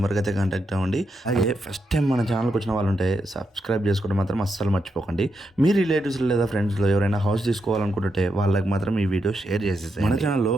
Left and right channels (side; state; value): both; normal; correlation 0.83